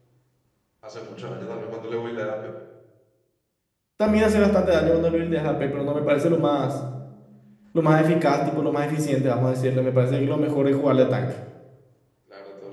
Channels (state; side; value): identical; both; correlation 1.00